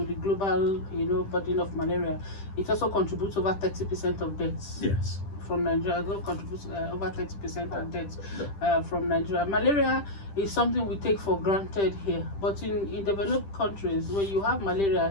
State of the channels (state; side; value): late; right; 10 ms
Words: the global, burden of malaria, it also contributes over 30% of deaths. Yes. From Nigeria, contributes over 30% of deaths from Nigeria. Malaria is something we take for granted here, but in developed countries, when you have malaria,